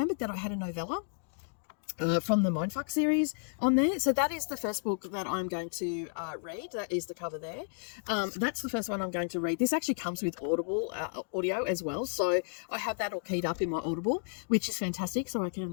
that I had a novella from the Mindfuck series on there. So that is the first book that I'm going to read. That is the cover there. That's the first one I'm going to read. This actually comes with Audible audio as well. So I have that all keyed up in my Audible, which is fantastic. So I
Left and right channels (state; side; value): silent; right; digital silence